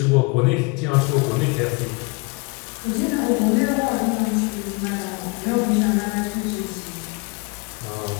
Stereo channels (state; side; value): quieter; right; 29.5 dB